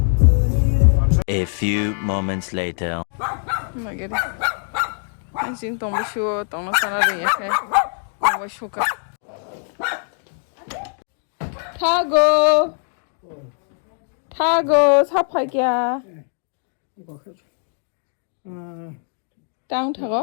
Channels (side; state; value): right; silent; 56 dB below the other